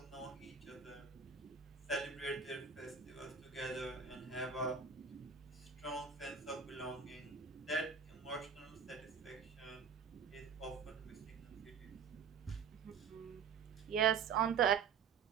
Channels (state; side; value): quieter; left; 6.4 dB